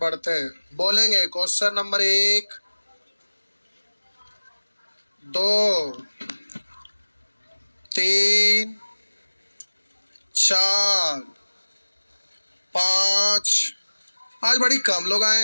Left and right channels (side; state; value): both; inverted; correlation -1.00